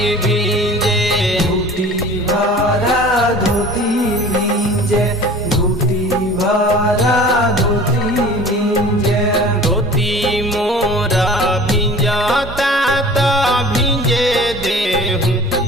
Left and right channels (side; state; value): both; normal; correlation 0.43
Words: भींजे घुटी भरा धोती भींजे घुटी भरा धोती भींजे धोती मोरा भिंजता तो भिंजे देहूँ